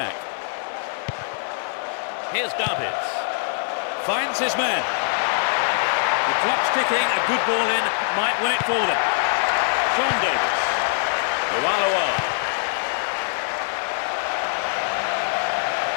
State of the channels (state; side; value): silent; right; digital silence